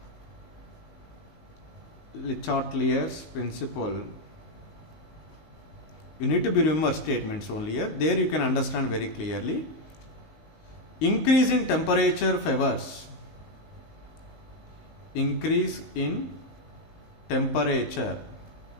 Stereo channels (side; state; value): right; late; 19 ms